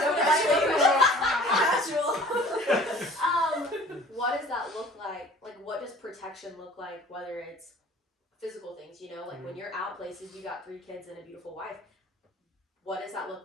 Casual. what does that look like? Like, what does protection look like? Whether it's physical things, you know, like when you're out places, you got 3 kids and a beautiful wife. What does that look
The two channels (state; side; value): normal; both; correlation 0.48